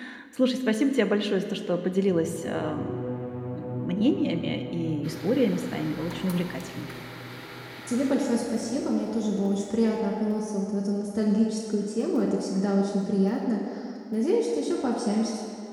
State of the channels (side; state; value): both; identical; correlation 1.00